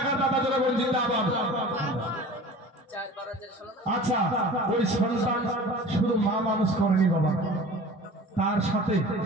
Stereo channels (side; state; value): both; normal; correlation 0.41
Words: দাতা জোরে বল জিন্দাবাদ। আচ্ছা, ওই সন্তান শুধু মা মানুষ করেনি বাবা,